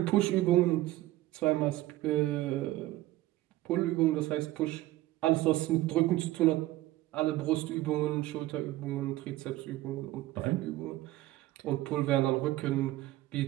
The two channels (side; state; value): left; quieter; 16.5 dB